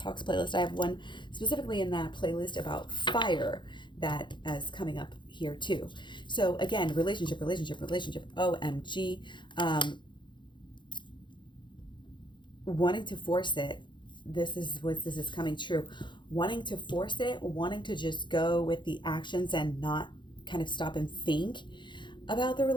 playlist. I have one specifically in that playlist about fire that is coming up here too. So again, relationship, OMG. Wanting to force it. This is coming true. Wanting to force it, wanting to just go with the actions and not kind of stop and think about the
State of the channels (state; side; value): late; right; 0.23 ms